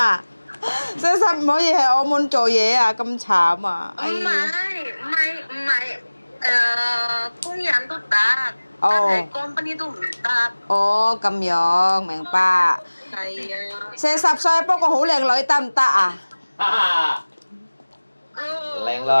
！40唔可以喺澳門做嘢啊，咁慘啊！唔係，工人都得，但係company都唔得。哦，咁樣明白。係啊。 40歲不過好靚女得唔得啊？ Leng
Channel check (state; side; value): inverted; both; correlation -1.00